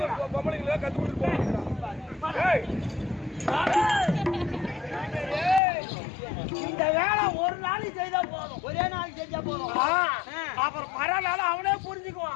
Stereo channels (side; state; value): right; drops out; at 5.6 s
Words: பொம்பளைங்கள கத்து கொடுத்து இந்த வேலை ஒரு நாளைக்கு செய்தா போதும் ஒரே நாளைக்கு செஞ்சா போதும் அப்புறம் மறுநாள் அவனே